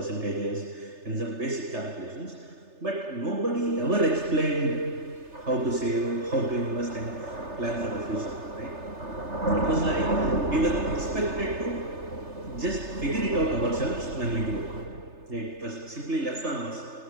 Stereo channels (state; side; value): late; left; 3.3 ms